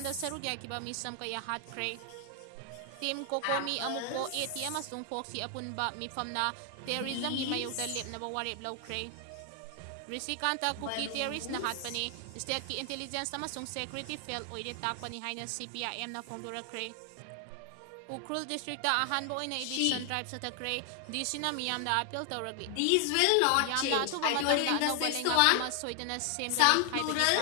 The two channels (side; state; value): both; different; correlation 0.00